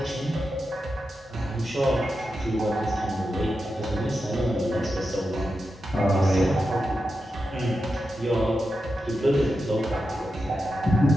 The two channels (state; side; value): normal; both; correlation 0.89